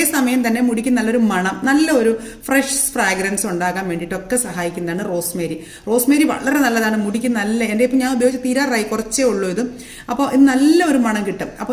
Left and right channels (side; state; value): both; identical; correlation 1.00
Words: തന്നെ മുടിക്ക് നല്ലൊരു മണം, നല്ലൊരു ഫ്രഷ് ഫ്രാഗ്രൻസ് ഉണ്ടാകാൻ വേണ്ടിയിട്ടൊക്കെ സഹായിക്കുന്നതാണ് റോസ്മേരി. റോസ്മേരി വളരെ നല്ലതാണ് മുടിക്ക്. എൻ്റെ ഇപ്പം ഞാൻ ഉപയോഗിച്ച് തീരാറായി, കുറച്ചേ ഉള്ളൂ ഇത്. അപ്പോൾ ഇത് നല്ലൊരു മണം കിട്ടും.